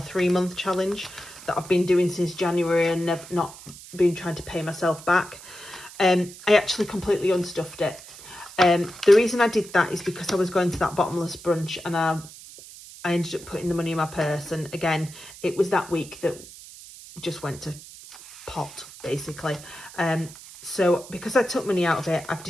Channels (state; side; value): noise; right; hiss, 17 dB below the sound